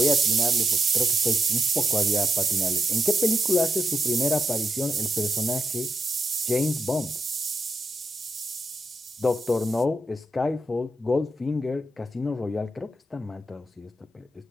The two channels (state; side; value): normal; both; correlation 0.84